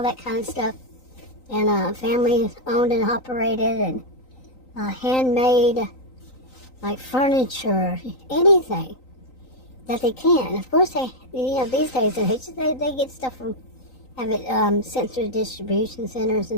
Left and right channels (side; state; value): right; late; 3.9 ms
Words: that kind of stuff. And family owned and operated, and handmade, like furniture, anything that they can. Of course, these days they get stuff from, have it sent through distribution centers